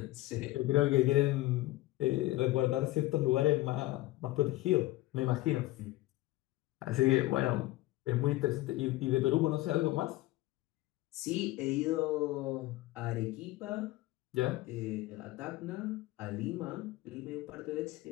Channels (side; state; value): right; quieter; 18.0 dB